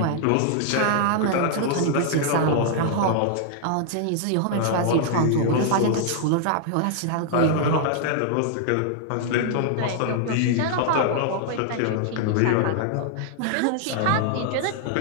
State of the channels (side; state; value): both; different; correlation -0.01